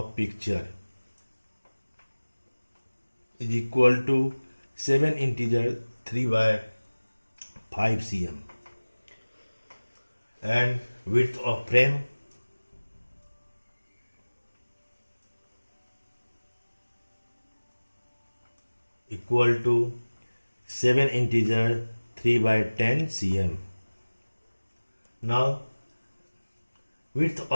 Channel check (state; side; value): inverted; both; correlation -1.00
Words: picture is equal to 7 integer 3 by 5 cm, and width of frame equal to 7 integer 3 by 10 cm. Now width